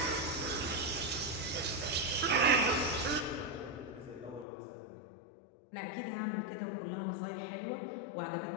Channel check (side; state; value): right; drops out; at 4.5 s